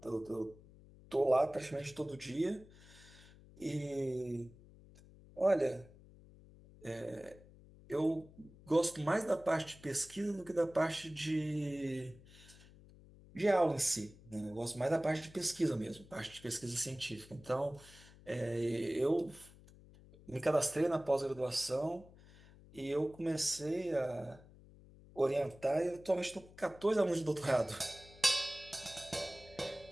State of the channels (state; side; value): noise; left; hum, 22 dB below the sound